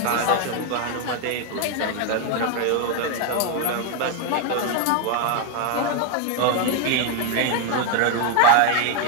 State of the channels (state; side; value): different; both; correlation 0.01